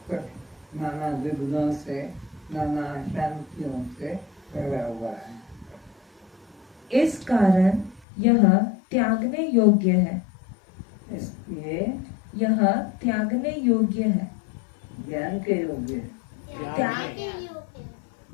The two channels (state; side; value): drops out; right; at 8.0 s